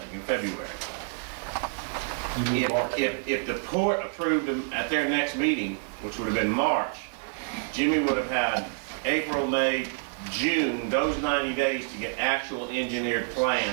in February. If the port approved them at their next meeting, which would have been March, Jimmy would have had April, May, June, those 90 days to get actual engineered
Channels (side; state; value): left; silent; 59 dB below the other